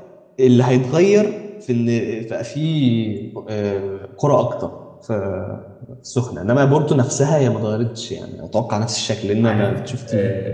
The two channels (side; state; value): both; identical; correlation 1.00